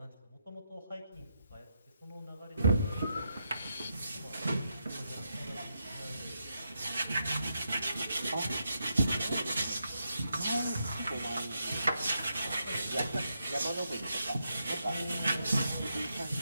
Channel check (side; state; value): both; inverted; correlation -0.83